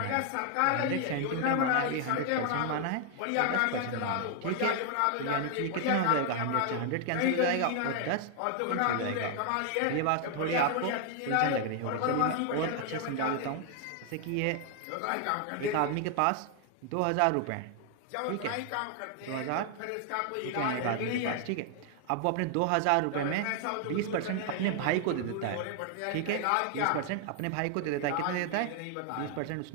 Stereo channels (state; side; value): different; both; correlation 0.00